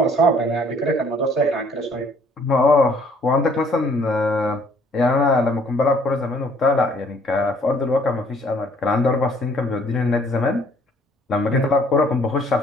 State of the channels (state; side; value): normal; both; correlation 0.60